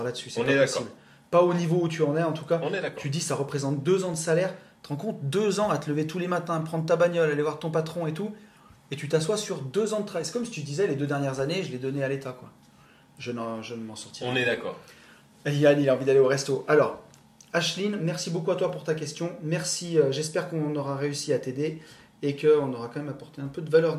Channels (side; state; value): both; identical; correlation 1.00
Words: là-dessus. C'est On pas est d'accord. possible. Pas au niveau où tu en es, en tout cas. On est d'accord. Tu dis, ça représente 2 ans de salaire. Tu te rends compte, 2 ans à te lever tous les matins, prendre ta bagnole, aller voir ton patron et tout, et tu t'assois sur 2 ans de travail. C'est comme si tu disais, les 2 dernières années, je les donnais à l'État, quoi. Je ne m'en sortirai On est d'accord. Yann, il a envie d'aller au resto. Alors, Ashlyn, merci beaucoup à toi pour ta question. Merci, j'espère qu'on aura réussi à t'aider et qu'on aura quand même apporté un peu de valeur